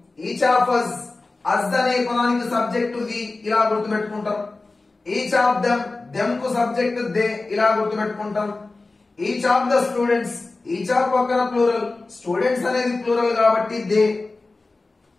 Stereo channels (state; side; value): quieter; right; 3.4 dB